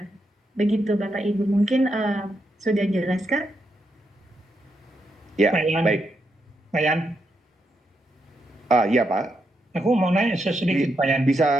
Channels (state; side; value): normal; both; correlation 0.82